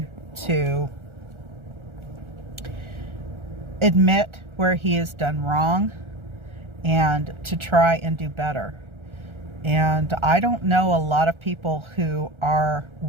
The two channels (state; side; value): late; left; 1.4 ms